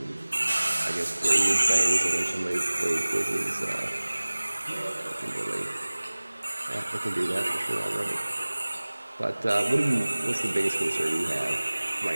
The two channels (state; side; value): inverted; both; correlation -1.00